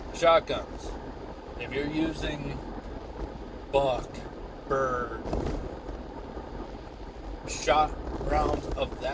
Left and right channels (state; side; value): identical; both; correlation 1.00